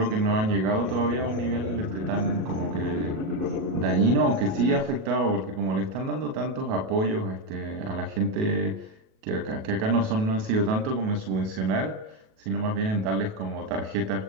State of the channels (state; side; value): late; left; 37 ms